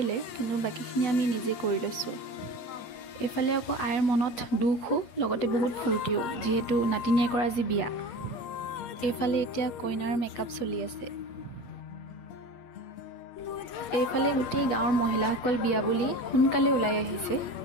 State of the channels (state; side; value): late; right; 8.1 ms